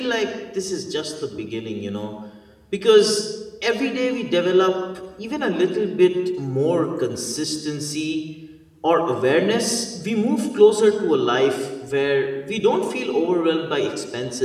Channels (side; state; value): both; identical; correlation 1.00